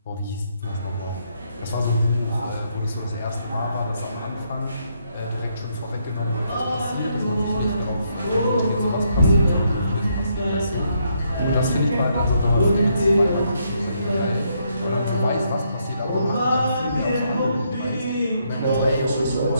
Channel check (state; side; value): inverted; both; correlation -0.75